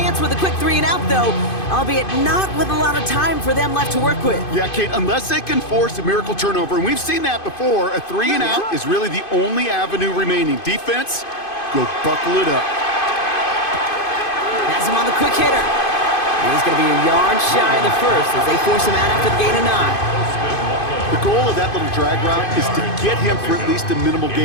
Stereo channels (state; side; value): late; right; 2.5 ms